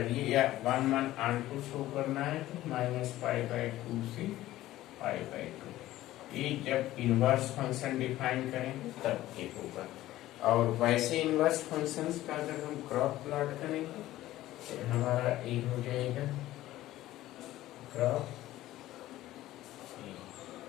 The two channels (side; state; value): right; quieter; 15.3 dB